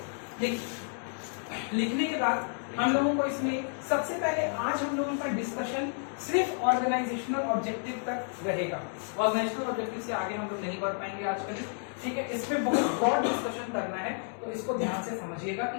लिखने के बाद हम लोगों को इसमें सबसे पहले आज हम लोगों का डिस्कशन सिर्फ ऑर्गेनाइजेशनल ऑब्जेक्टिव तक रहेगा। ऑर्गेनाइजेशनल ऑब्जेक्टिव से आगे हम लोग नहीं बढ़ पाएंगे आज कल। ठीक है, इस पे बहुत ब्रॉड डिस्कशन करना है, तो इसको ध्यान से समझिएगा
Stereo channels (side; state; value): right; silent; 57 dB below the other